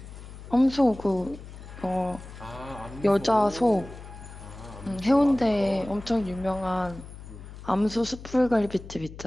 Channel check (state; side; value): noise; left; hum, 14 dB below the sound